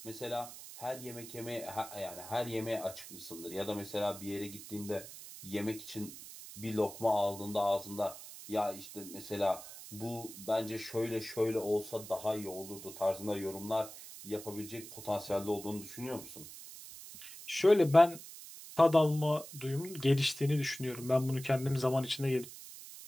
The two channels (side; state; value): right; noise; hiss, 14 dB below the sound